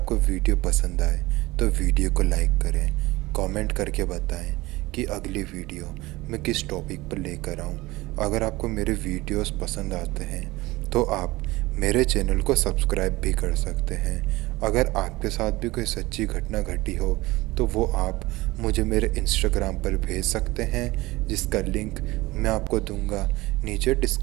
वीडियो पसंद आए तो वीडियो को लाइक करें, कमेंट करके बताएं कि अगली वीडियो मैं किस टॉपिक पर लेकर आऊँ। अगर आपको मेरे वीडियोस पसंद आते हैं तो आप मेरे चैनल को सब्सक्राइब भी कर सकते हैं। अगर आपके साथ भी कोई सच्ची घटना घटी हो तो वो आप मुझे मेरे इंस्टाग्राम पर भेज सकते हैं, जिसका लिंक मैं आपको दूंगा नीचे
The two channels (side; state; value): left; quieter; 20.2 dB